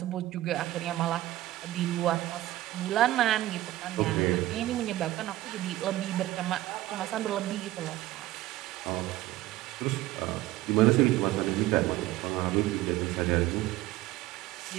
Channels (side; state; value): left; quieter; 16.1 dB